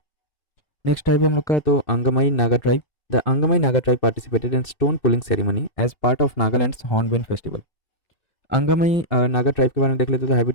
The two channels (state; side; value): late; right; 2.6 ms